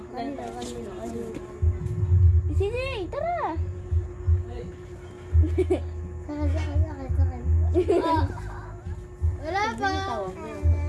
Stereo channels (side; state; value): both; identical; correlation 1.00